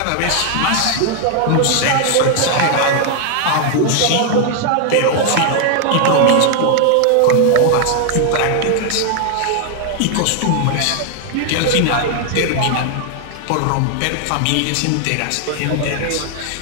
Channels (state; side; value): different; both; correlation 0.00